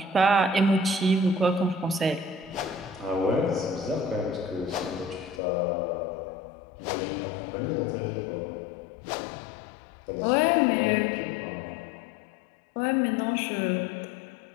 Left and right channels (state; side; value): drops out; right; at 5.4 s